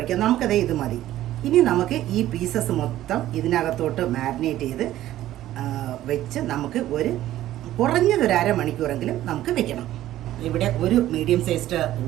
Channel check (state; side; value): quieter; left; 13.8 dB